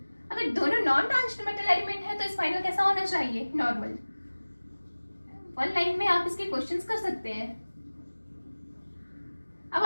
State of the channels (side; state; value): both; inverted; correlation -1.00